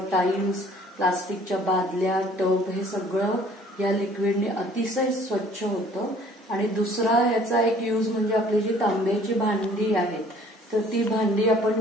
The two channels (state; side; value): normal; both; correlation 0.55